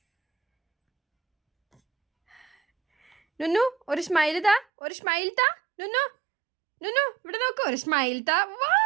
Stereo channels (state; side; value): drops out; left; at 4.7 s